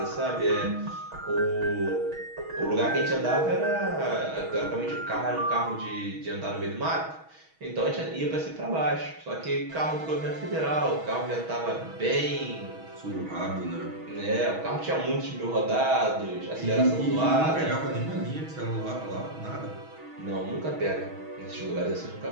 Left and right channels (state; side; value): late; left; 6.3 ms